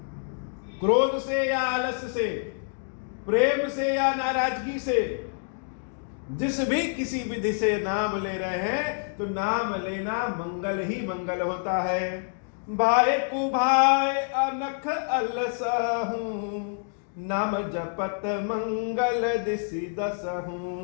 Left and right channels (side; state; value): right; silent; 60 dB below the other